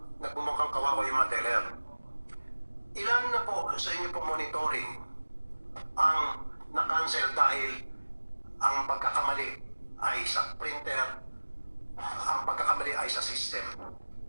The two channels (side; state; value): both; inverted; correlation -1.00